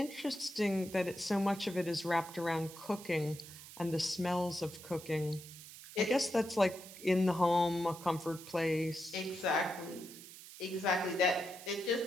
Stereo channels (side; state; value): right; noise; hiss, 15 dB below the sound